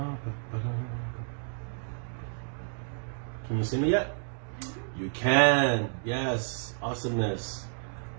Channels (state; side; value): silent; left; digital silence